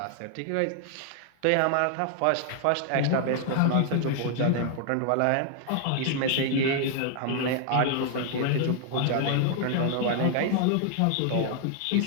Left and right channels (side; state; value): both; different; correlation 0.00